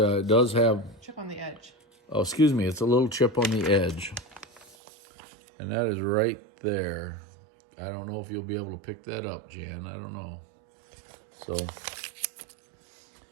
does have... Chip on the edge. Oh, excuse me. It's a little chip on the edge. And that is right there. I don't know if you'll be able to pick that up, Jan. I don't know. So,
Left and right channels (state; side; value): drops out; left; at 4.8 s